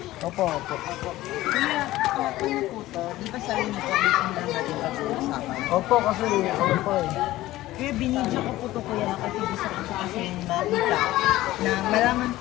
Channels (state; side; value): quieter; right; 16.4 dB